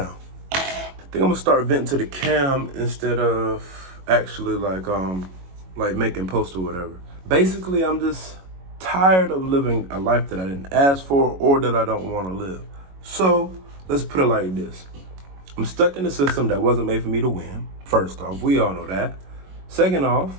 I think I'm gonna start venting to the cam instead of actually like making posts or whatever. Basically, I'm just tired of living a life that I didn't ask for or that I don't want to live. So let's put it like this. I'm stuck in a system that wasn't made for me to win. First off, we all know that. Second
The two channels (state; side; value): late; left; 22 ms